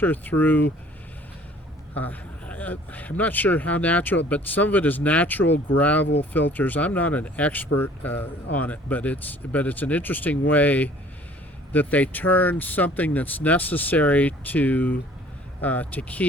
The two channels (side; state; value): both; normal; correlation 0.54